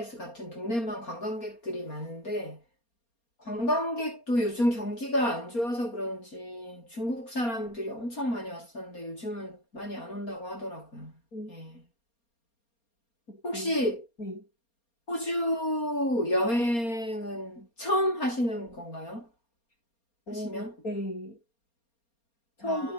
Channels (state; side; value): late; right; 4.3 ms